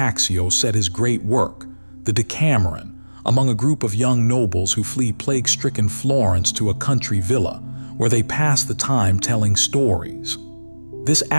said his great work, the Decameron, among a group of young nobles who flee plague-stricken Florence to a country villa, where they pass the time telling stories. This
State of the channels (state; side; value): inverted; both; correlation -1.00